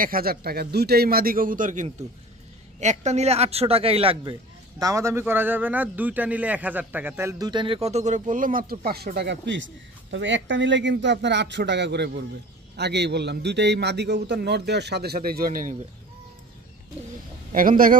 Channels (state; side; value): normal; both; correlation 0.41